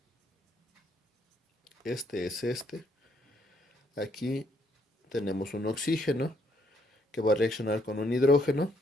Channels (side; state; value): both; normal; correlation 0.71